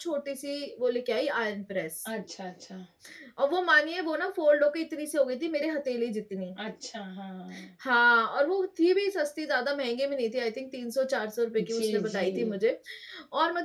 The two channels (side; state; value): both; identical; correlation 1.00